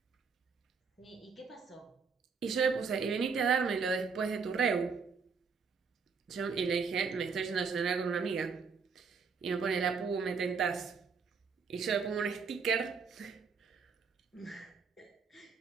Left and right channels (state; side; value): quieter; left; 5.4 dB